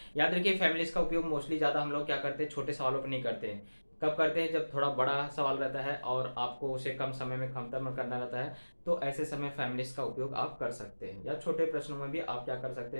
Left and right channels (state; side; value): inverted; both; correlation -1.00